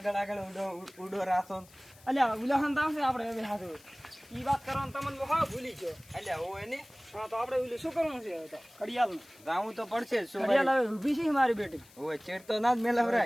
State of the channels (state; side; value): noise; left; hiss, 25 dB below the sound